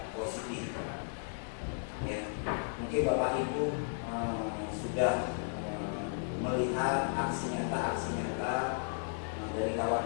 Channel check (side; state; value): right; silent; digital silence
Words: positif, ya. Mungkin Bapak Ibu sudah melihat aksi nyata dari